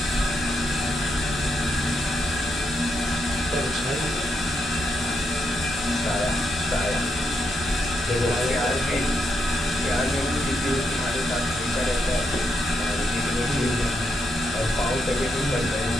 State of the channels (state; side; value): normal; both; correlation 0.80